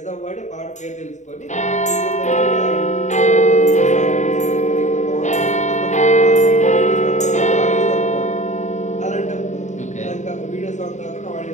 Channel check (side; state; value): right; late; 0.34 ms